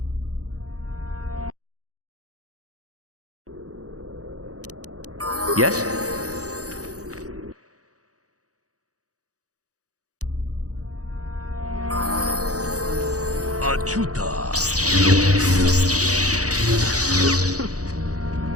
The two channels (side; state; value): left; late; 0.67 ms